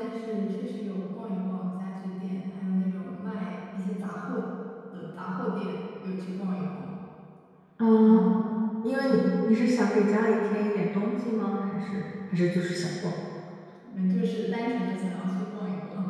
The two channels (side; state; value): both; identical; correlation 1.00